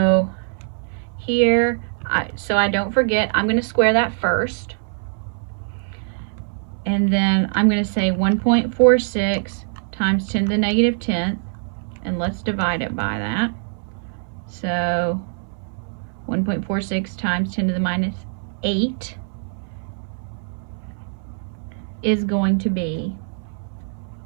here, so I don't forget, I'm going to square that first. And then I'm going to say 1.46 times 10 to the negative 10th. And let's divide it by that. So 1.46 times 10 to the minus 8 is going to be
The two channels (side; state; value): left; silent; 63 dB below the other